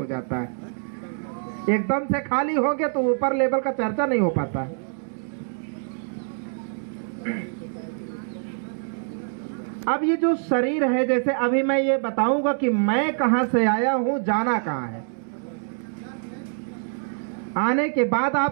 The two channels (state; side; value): silent; left; 58 dB below the other